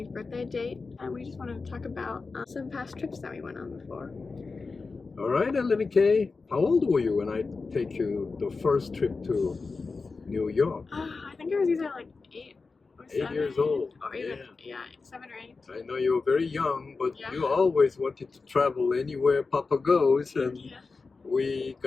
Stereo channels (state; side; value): quieter; right; 4.2 dB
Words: birthday date, and we just wanted to talk about some past trips that we went on before. All right, Lenny K. How old were you when I take you the first trip to New York? I think I was either like 8 or 7. 8 years old. Or even, yeah 7 or 8. I know you were very young, but Yeah. you always wanted to travel anywhere Papa goes, and Yeah. we